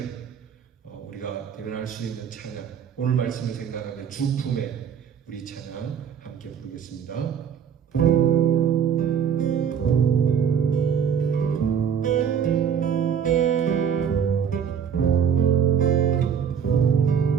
우리가 대면할 수 있는 찬양, 오늘 말씀을 생각하며 주품에 우리 찬양 함께 부르겠습니다.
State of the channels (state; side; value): quieter; left; 7.8 dB